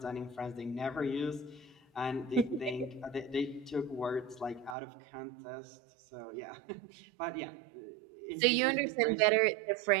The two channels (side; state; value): left; drops out; at 4.8 s